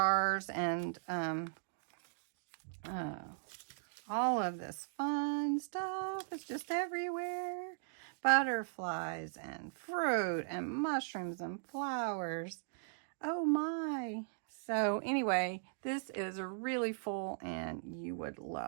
and all of this fun stuff is just everywhere. Butterflies and fruit and mushrooms and flowers. Oh my. So anyway, this is really full and you would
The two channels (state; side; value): silent; left; digital silence